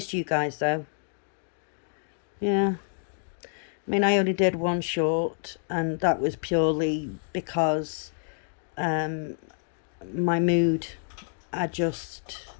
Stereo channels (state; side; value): silent; right; digital silence